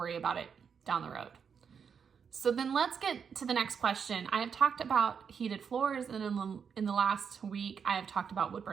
about it down the road. So then let's get to the next question. I have talked about heated floors, and in the last week, I have talked about wood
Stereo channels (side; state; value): left; quieter; 6.7 dB